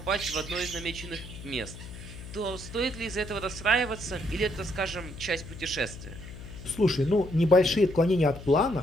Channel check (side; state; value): left; noise; hum, 13 dB below the sound